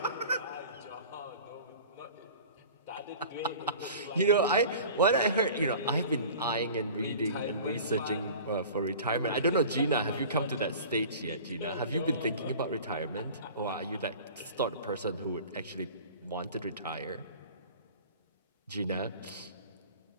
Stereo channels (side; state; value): both; inverted; correlation -0.41